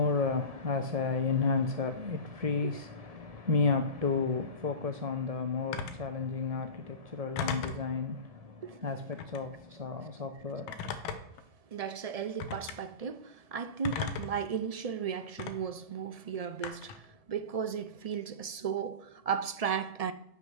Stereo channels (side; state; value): left; late; 1.7 ms